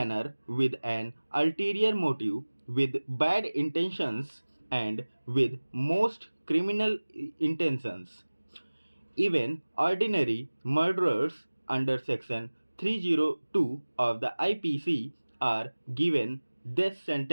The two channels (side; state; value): both; inverted; correlation -1.00